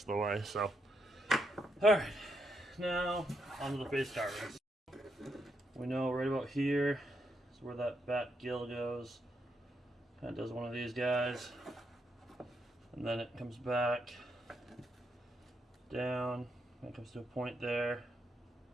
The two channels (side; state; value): both; normal; correlation 0.80